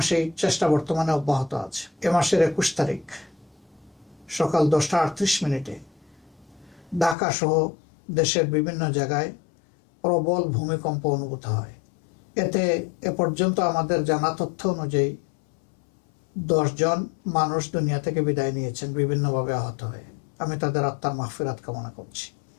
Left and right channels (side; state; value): right; drops out; at 7.2 s